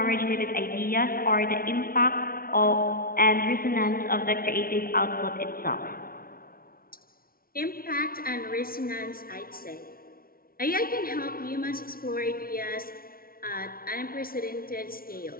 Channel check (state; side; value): late; right; 0.43 ms